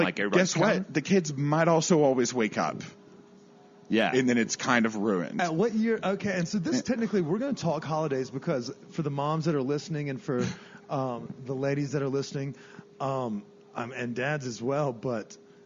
guess what? The kids might also always wake up. Yeah. And then it's kind of ruined. At what year? Okay, and so this technically, we're going to talk holidays because for the moms that are listening and for the ladies that are listening, and dads as well, but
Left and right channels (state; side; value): identical; both; correlation 1.00